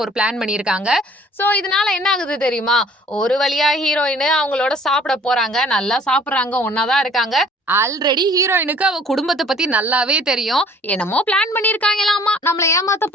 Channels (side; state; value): both; normal; correlation 0.54